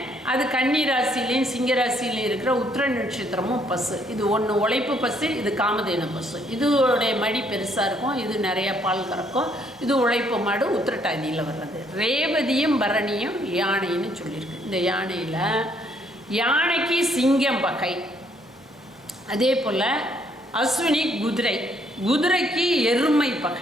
அது கன்னி ராசிலையும் சிங்கராசிலையும் இருக்கிற உத்திர நட்சத்திரமும் பசு. இது ஒன்று உழைப்பு பசு, இது காமதேனு பசு. இதோடைய மடி பெருசாக இருக்கும், இது நிறைய பால் கறக்கும். இது உழைப்பு மாடு, உத்திரட்டாதியில் வர்றது. ரேவதியும் பரணியும் யானைன்னு சொல்லியிருக்கு. இந்த யானையில் யானைக்கு சிங்கம் பகை. அதே போல் அஸ்வினி குதிரை, குதிரைக்கு எருமை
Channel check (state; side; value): normal; both; correlation 0.68